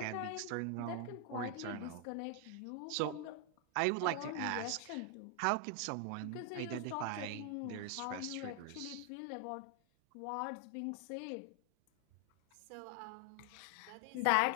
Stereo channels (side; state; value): both; different; correlation 0.00